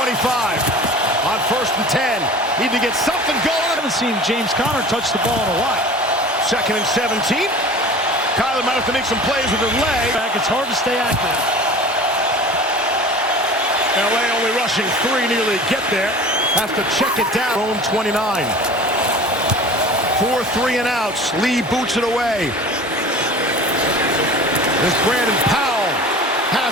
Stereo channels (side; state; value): both; normal; correlation 0.40